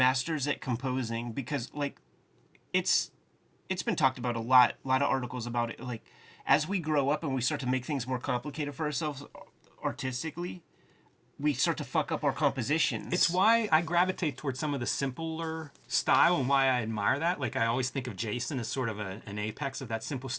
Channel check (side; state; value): both; identical; correlation 1.00